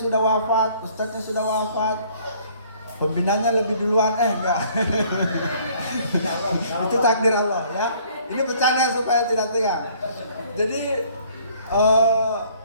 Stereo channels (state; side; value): inverted; both; correlation -0.58